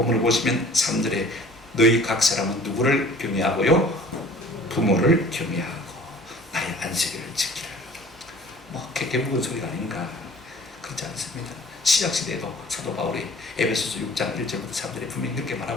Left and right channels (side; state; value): both; normal; correlation 0.48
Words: 보시면 3절에 너희 각 사람은 누구를 경외하고요? 부모를 경외하고 나의 안식일을 지키라. 뭐 개무건 소리가 아닌가? 그렇지 않습니다. 신약시대에도 사도 바울이 에베소서 6장 1절부터 3절에 분명히 이렇게